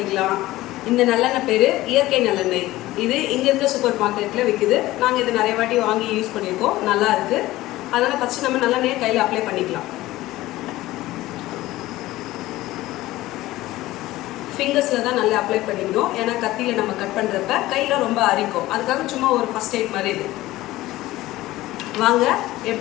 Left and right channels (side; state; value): right; quieter; 17.1 dB